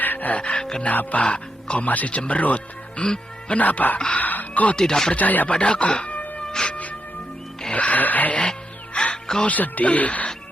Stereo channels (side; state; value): both; normal; correlation 0.83